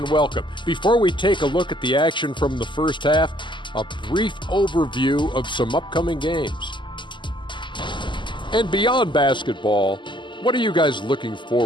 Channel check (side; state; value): right; late; 0.23 ms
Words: welcome. Before we take a look at the action from the first half, a brief overview of some upcoming games. And beyond basketball, what are you guys looking